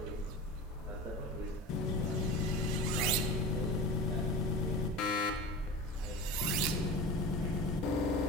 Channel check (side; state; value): both; normal; correlation 0.32